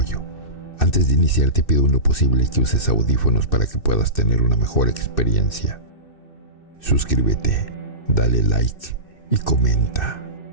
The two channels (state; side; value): late; right; 2.6 ms